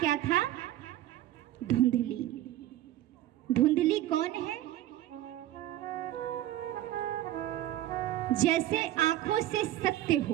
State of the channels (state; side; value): quieter; left; 13.9 dB